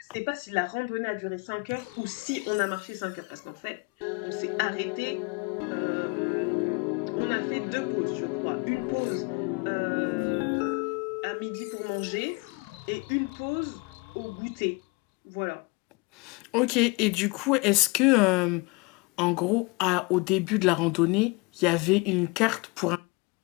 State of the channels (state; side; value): quieter; right; 27.7 dB